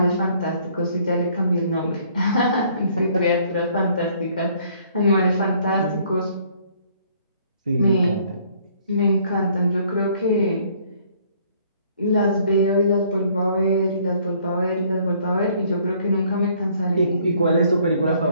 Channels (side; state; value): both; inverted; correlation -0.62